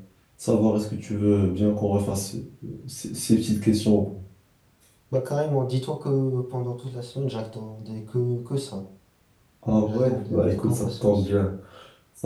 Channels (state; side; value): identical; both; correlation 1.00